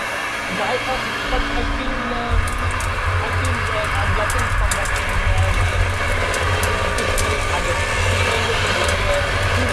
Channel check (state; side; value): identical; both; correlation 1.00